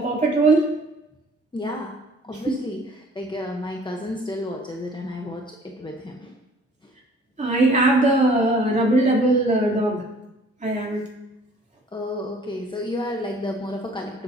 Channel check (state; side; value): normal; both; correlation 0.54